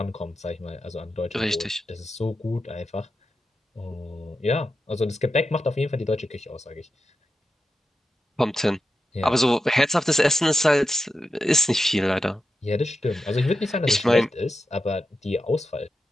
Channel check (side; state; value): both; normal; correlation 0.89